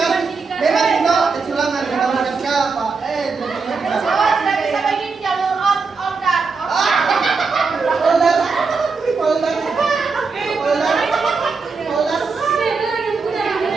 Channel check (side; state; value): left; quieter; 4.7 dB